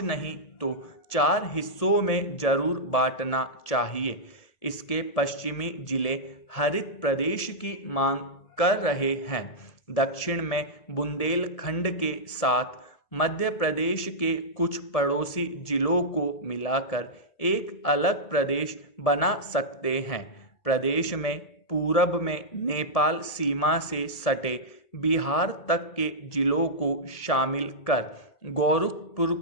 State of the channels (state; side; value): late; right; 1.7 ms